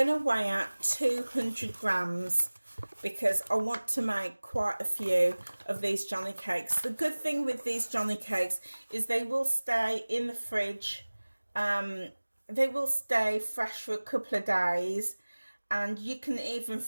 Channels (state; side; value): inverted; both; correlation -1.00